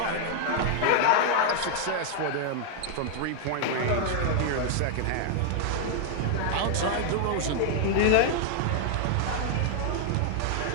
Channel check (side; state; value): both; different; correlation 0.00